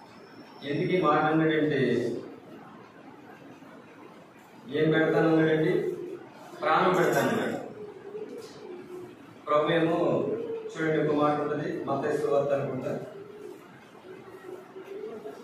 ఎందుకు ఈ మాట అన్నాడంటే ఏం పెడతానన్నాడండి? ప్రాణం పెడతానన్నాడు. ప్రభు ఏమో చూడండి ఒక మాట ఉంటుంది, మత్తయి సువార్త అనుకుంటా,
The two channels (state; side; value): identical; both; correlation 1.00